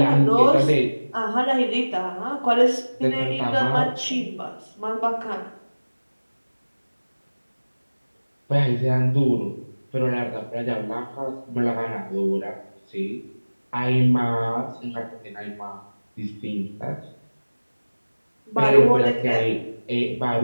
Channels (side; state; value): both; inverted; correlation -1.00